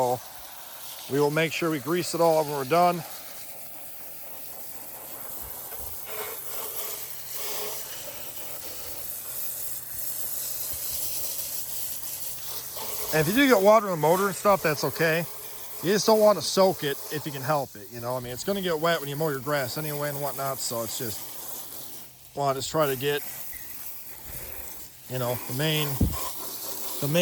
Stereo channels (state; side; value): identical; both; correlation 1.00